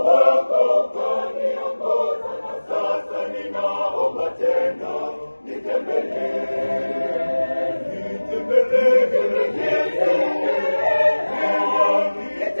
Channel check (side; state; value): both; inverted; correlation -1.00